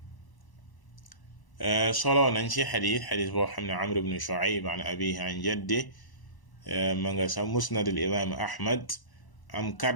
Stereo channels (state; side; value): late; right; 1.0 ms